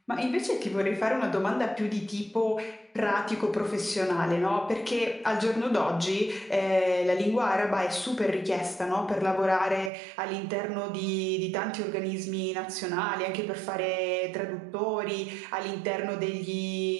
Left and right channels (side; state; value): left; drops out; at 9.9 s